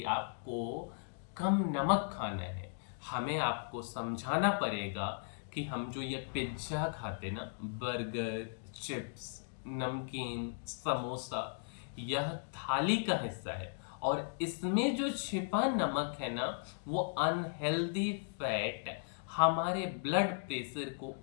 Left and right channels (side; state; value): right; silent; digital silence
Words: आपको कम नमक खाना है। हमें आपको समझाना पड़ेगा कि हम जो ये पिज्ज़ा खाते ना, बर्गर, चिप्स, नमकीन, समोसा, यह थाली का हिस्सा है और इसमें जो छिपा नमक है ना वो अनहेल्दी फैट हमारे ब्लड प्रेशर को